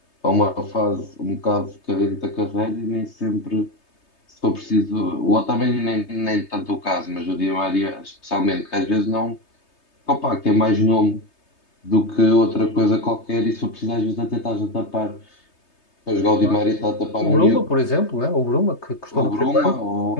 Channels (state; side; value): late; right; 3.3 ms